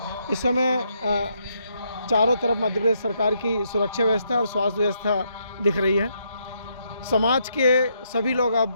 इस समय चारों तरफ मध्य प्रदेश सरकार की सुरक्षा व्यवस्था और स्वास्थ्य व्यवस्था दिख रही है। समाज के सभी लोग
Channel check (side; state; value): both; inverted; correlation -0.76